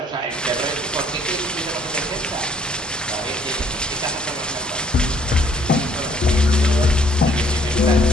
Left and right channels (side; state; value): both; normal; correlation 0.62